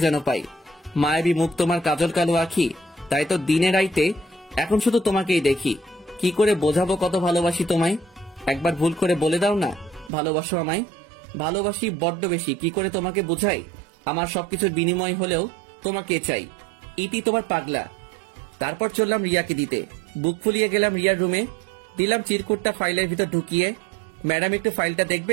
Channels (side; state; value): left; drops out; at 10.1 s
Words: যেন পাই। মায়াবী মুখ, তোমার কাজল কালো আখি, তাই তো দিনে রাইতে এখন শুধু তোমাকেই দেখি। কি করে বোঝাবো কত ভালোবাসি তোমায়? একবার ভুল করে বলে দাও না ভালোবাসো আমায়। ভালোবাসি বড্ড বেশি, কি করে তোমাকে বোঝাই? আমার সবকিছুর বিনিময় হলেও তোমাকে চাই। ইতি তোমার পাগলা। তারপর চললাম রিয়াকে দিতে। বুক ফুলিয়ে গেলাম রিয়ার রুমে। দিলাম চিরকুটটা ফাইলের ভিতর ঢুকিয়ে। ম্যাডাম, একটু ফাইলটা